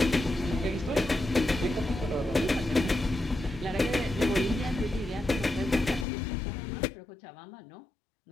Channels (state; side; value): drops out; right; at 6.1 s